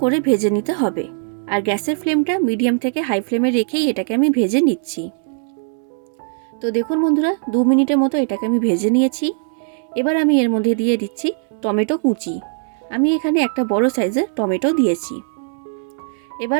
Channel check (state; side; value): silent; left; 66 dB below the other